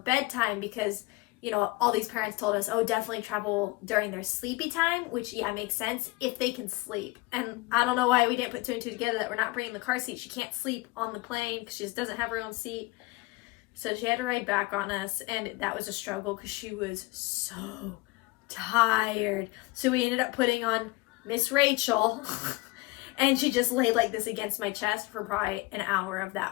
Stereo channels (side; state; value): right; quieter; 22.3 dB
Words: because, you know, all these parents told us, oh, definitely travel during their sleepy time, which, yeah, makes sense if they can sleep. And I don't know why we didn't put 2 and 2 together that we're not bringing the car seat. She can't sleep on the plane because she just doesn't have her own seat. So she had to ride back on us, and that was a struggle because she was so tired. So we ended up putting on Miss Rachel, and she just laid like this against my chest for probably an hour of